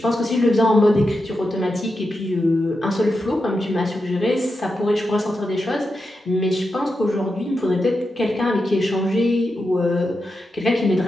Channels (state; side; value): normal; both; correlation 0.88